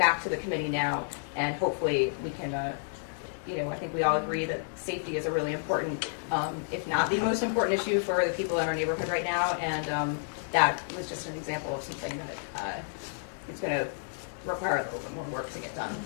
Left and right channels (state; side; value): silent; right; digital silence